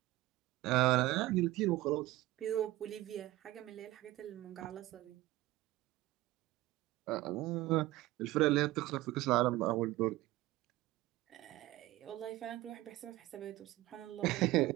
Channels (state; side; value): quieter; left; 17.4 dB